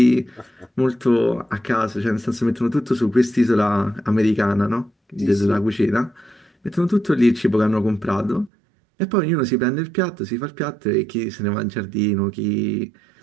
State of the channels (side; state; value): left; drops out; at 8.5 s